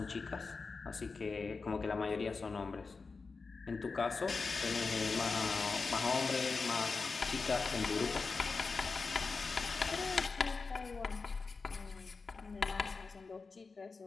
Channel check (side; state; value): right; quieter; 4.4 dB